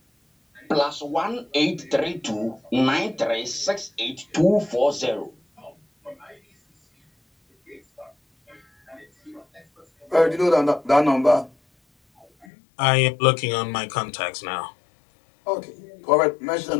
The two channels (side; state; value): right; drops out; at 12.5 s